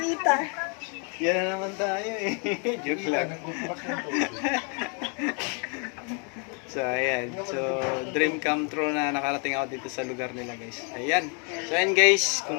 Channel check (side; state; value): right; quieter; 37.7 dB